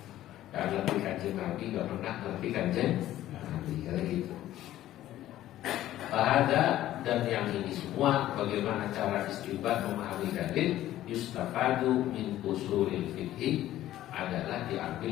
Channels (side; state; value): right; quieter; 13.7 dB